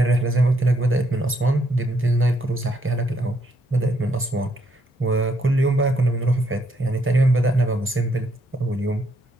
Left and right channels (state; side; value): normal; both; correlation 0.73